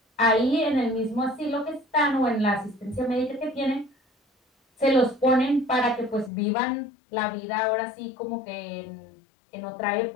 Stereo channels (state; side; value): drops out; right; at 6.3 s